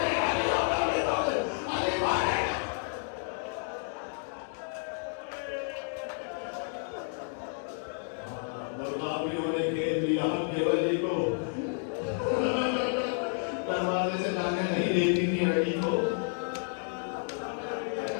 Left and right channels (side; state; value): right; silent; 57 dB below the other